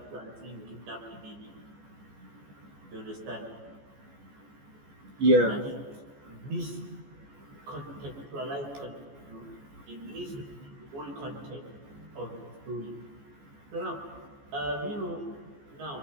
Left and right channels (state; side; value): late; left; 14 ms